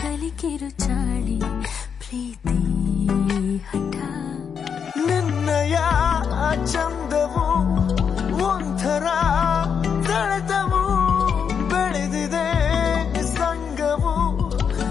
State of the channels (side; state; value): right; quieter; 7.0 dB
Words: ಕಿರುಚಾಳಿ, ಪ್ರೀತಿ ಹಠ. ನಿನ್ನಯ ಚಂದವು ಒಂಥರ ಸೆಳೆತವು, ಬೆಳೆದಿದೆ ಸಂಗವು,